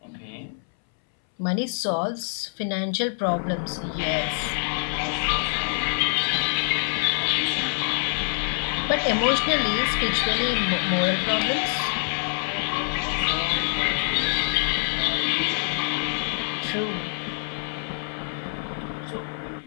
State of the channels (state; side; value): silent; right; 61 dB below the other